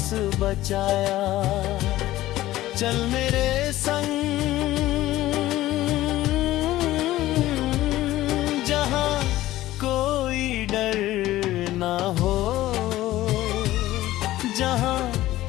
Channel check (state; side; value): quieter; right; 15.6 dB